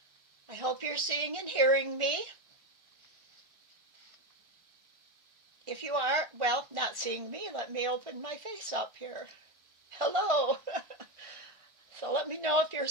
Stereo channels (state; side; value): late; left; 1.4 ms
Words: I hope you're seeing and hearing me. If you are, well, not seeing me, let me open my face up here. Hello. So let me know if you're